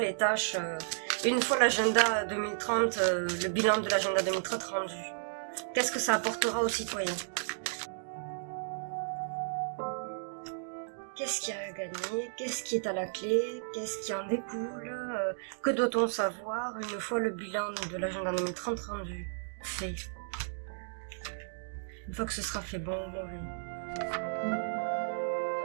tâches, une fois l'agenda 2030, le bilan de l'agenda 2030 rendu? Qu'est-ce que ça apportera aux citoyens? Qu'est-ce qu'il y a à gagner? Qu'est-ce qui est à la clé? Qu'est-ce qui en découle? Que doit-on savoir une fois le bilan de l'agenda 2030 rendu? Fait. Une fois que ce sera fait, bon ou mauvais.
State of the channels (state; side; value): silent; left; digital silence